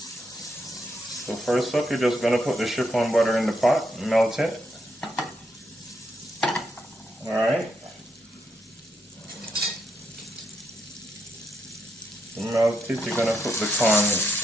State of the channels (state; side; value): normal; both; correlation 0.80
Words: So first up, you're just gonna put the chiffon butter in the pot, melt it. Alright? Melt it, you're gonna put the corn